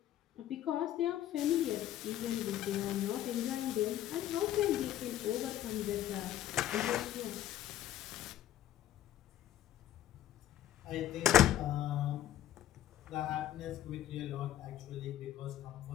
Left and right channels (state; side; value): quieter; right; 12.4 dB